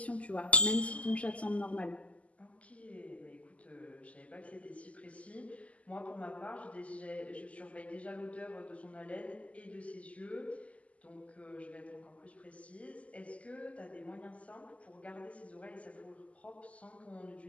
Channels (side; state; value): right; late; 0.067 ms